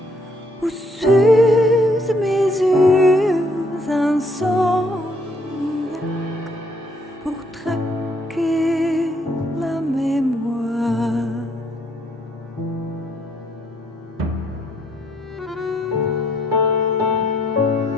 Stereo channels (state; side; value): normal; both; correlation 0.69